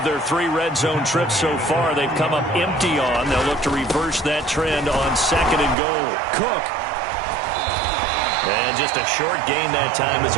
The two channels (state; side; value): drops out; left; at 5.8 s